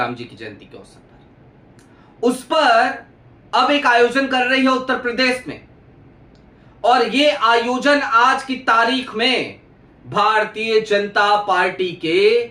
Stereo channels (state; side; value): identical; both; correlation 1.00